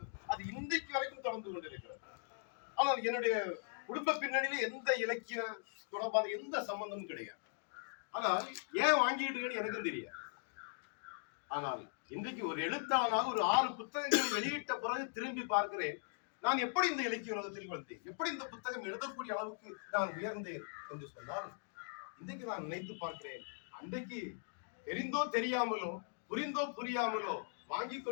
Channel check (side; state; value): right; silent; digital silence